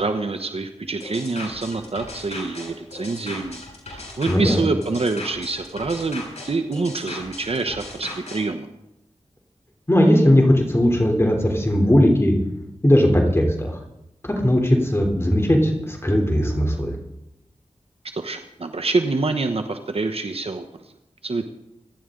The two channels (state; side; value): normal; both; correlation 0.89